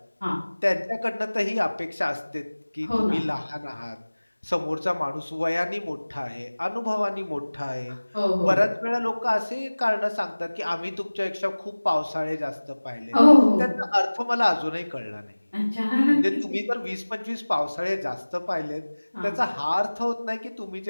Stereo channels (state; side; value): inverted; both; correlation -1.00